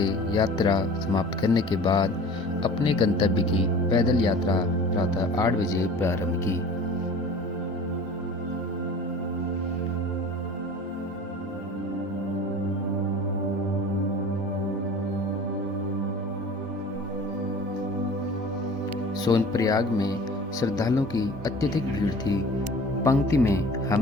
यात्रा समाप्त करने के बाद अपने गंतव्य की पैदल यात्रा प्रातः 8 बजे प्रारंभ की। सोनप्रयाग में श्रद्धालुओं की अत्यधिक भीड़ थी। पंक्ति में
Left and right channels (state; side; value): normal; both; correlation 0.42